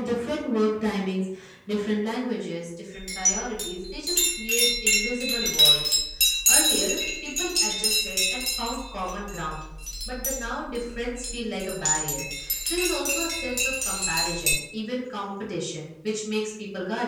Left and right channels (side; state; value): both; identical; correlation 1.00